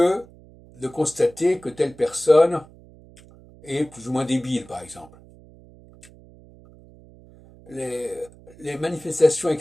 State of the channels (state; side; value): noise; right; hum, 23 dB below the sound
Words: de constater que telle personne est plus ou moins débile, par exemple. Les, les manifestations